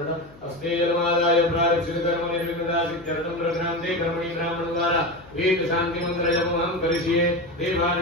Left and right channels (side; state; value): left; noise; hum, 23 dB below the sound